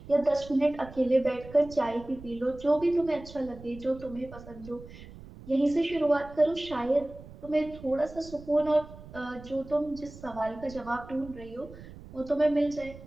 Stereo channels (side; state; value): right; noise; rumble, 17 dB below the sound